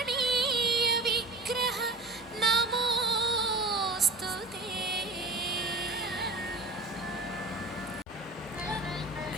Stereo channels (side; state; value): both; normal; correlation 0.35